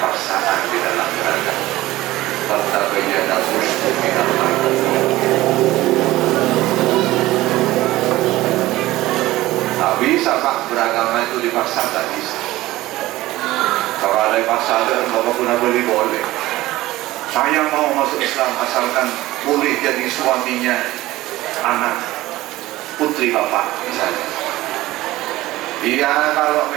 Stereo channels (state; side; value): quieter; left; 17.2 dB